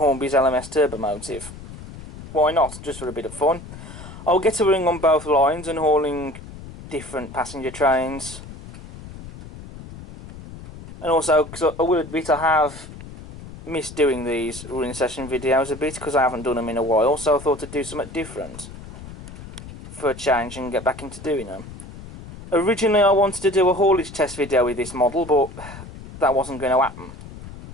LMS Turbomotive. Why not, just for a bit of fun. I'll get a running on both lines and hauling different passenger trains. And also, because I will admit I have missed doing these running session videos a bit because I haven't done them in a while, so I thought I'd do something different for a change and get back into doing them. Originally I wanted to do a haulage test video with this model, but that wasn't going to happen.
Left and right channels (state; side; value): noise; left; rumble, 14 dB below the sound